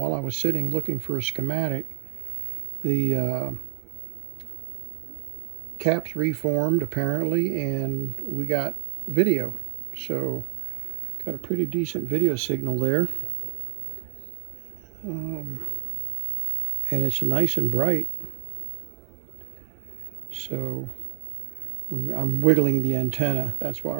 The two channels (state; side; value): silent; left; digital silence